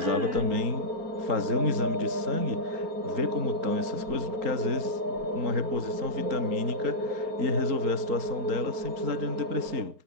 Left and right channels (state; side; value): late; left; 4.4 ms